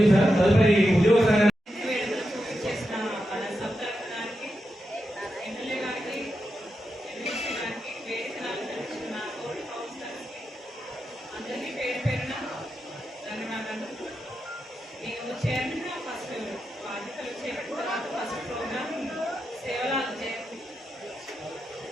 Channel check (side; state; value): both; normal; correlation 0.88